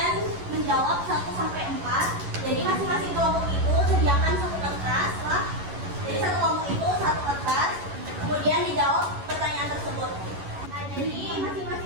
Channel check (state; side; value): late; left; 11 ms